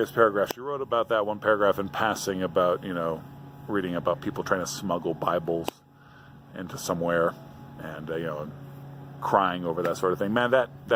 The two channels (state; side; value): identical; both; correlation 1.00